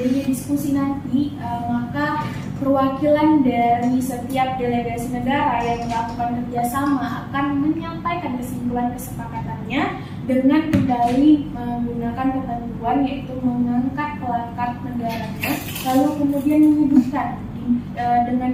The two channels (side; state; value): both; identical; correlation 1.00